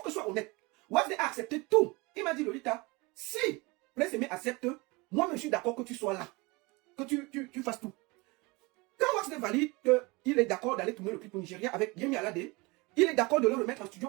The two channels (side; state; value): left; quieter; 25.5 dB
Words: que je sois honnête. Waxday a accepté tout. Il m'a dit, Lolita, si Prince Aimé accepte, moi je suis d'accord que tu sois là. Que tu fasses tout. Quand Waxday valide qu'il est d'accord d'aller tourner le clip au Nigeria avec Yemi Alade, il est d'accord de le remettre en studio